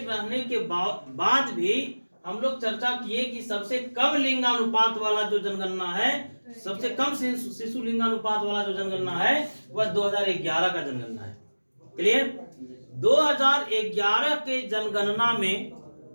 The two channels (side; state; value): both; inverted; correlation -1.00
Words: रहने के बाद भी हम लोग चर्चा किए कि सबसे कम लिंगानुपात वाला जो जनगणना है, सबसे कम शिशु लिंगानुपात वाला जो जनगणना है वह 2011 का जनगणना है, क्लियर। 2011 के जनगणना में